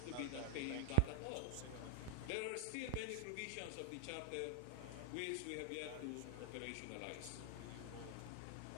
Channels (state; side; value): different; both; correlation 0.00